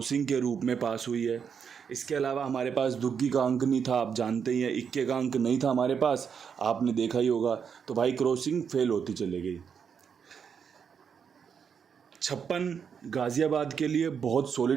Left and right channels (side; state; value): left; quieter; 6.9 dB